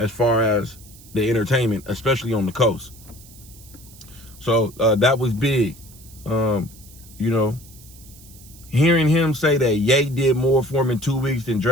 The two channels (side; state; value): right; noise; hiss, 22 dB below the sound